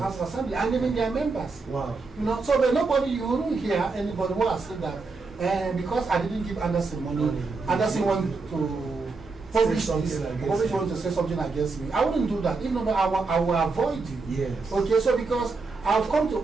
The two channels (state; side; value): quieter; left; 4.1 dB